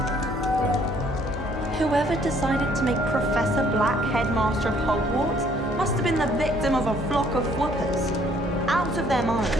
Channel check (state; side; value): normal; both; correlation 0.62